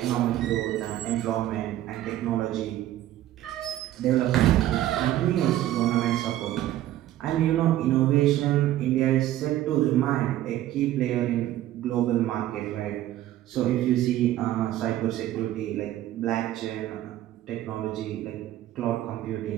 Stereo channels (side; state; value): left; quieter; 13.6 dB